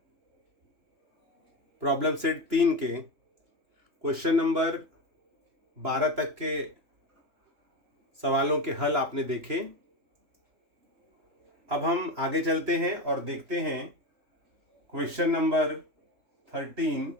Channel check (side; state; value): left; late; 3.0 ms